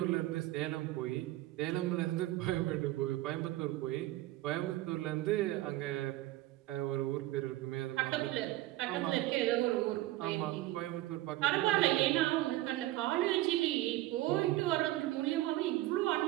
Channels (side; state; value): left; quieter; 16.7 dB